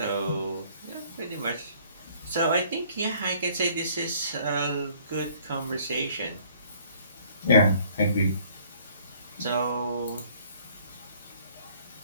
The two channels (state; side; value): inverted; both; correlation -0.58